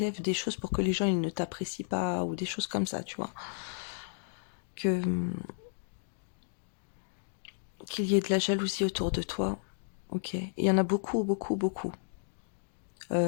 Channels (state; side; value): silent; right; digital silence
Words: des choses pour que les gens ils ne t'apprécient pas, ou des choses comme ça, tu vois. Qu'il y ait de la jalousie autour de toi, ok. Il y en a beaucoup, beaucoup, beaucoup.